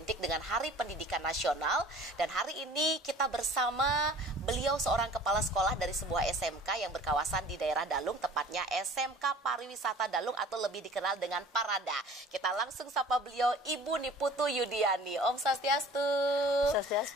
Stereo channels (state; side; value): normal; both; correlation 0.47